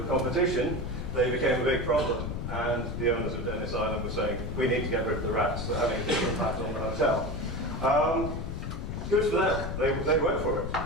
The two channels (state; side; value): noise; left; rumble, 4 dB below the sound